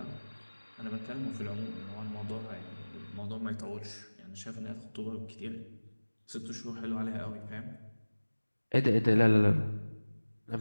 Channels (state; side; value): inverted; both; correlation -1.00